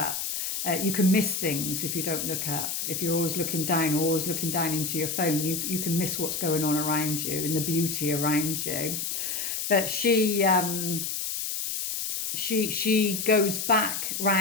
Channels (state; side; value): noise; left; hiss, 2 dB below the sound